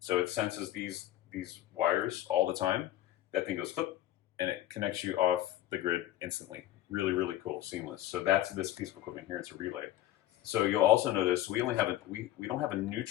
it senses these wires all the time, that thing goes flip, and it connects you off the grid instantly. Really, really cool, seamless. So that's this piece of equipment here. It's a relay. So you'll also notice we only have we don't have a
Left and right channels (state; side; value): quieter; right; 13.9 dB